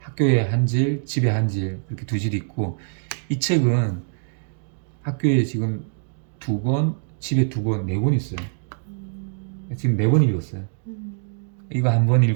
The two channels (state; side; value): silent; left; digital silence